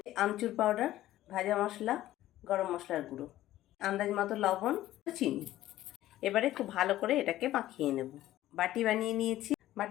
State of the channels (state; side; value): quieter; right; 14.4 dB